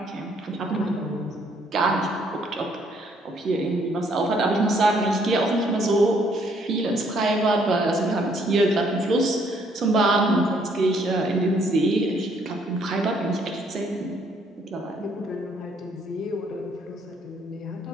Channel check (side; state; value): both; normal; correlation 0.67